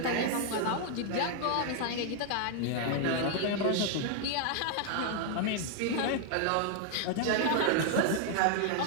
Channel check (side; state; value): both; different; correlation 0.00